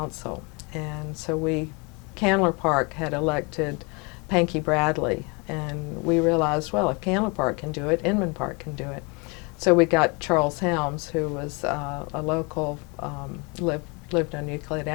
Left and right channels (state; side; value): quieter; right; 30.5 dB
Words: And so Candler Park had elected Cathy Bradley, and we realized, well, if Candler Park can do it, Inman Park can do it. So we got Charles Helms, who was a local, lived on Euclid